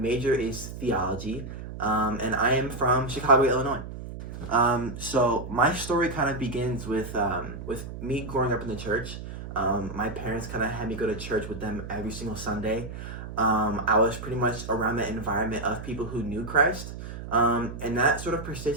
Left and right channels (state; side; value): noise; right; hum, 10 dB below the sound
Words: is theology, and I am from Chicago, Illinois. So my story kind of begins with me growing up in the church. My parents kind of had me go to church with them every single Sunday. I was pretty much around the environment of people who knew Christ, and that sort of